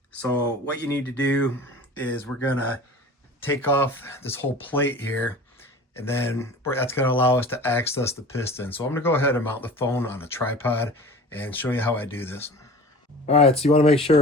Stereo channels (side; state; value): both; normal; correlation 0.40